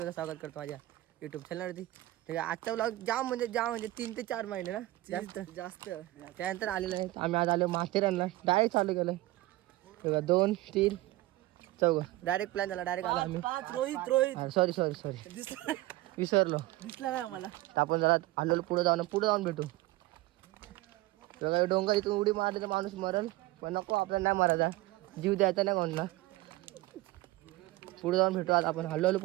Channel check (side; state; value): left; quieter; 18.4 dB